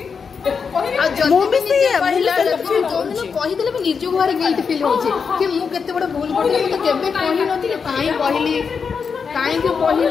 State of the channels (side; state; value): right; quieter; 5.8 dB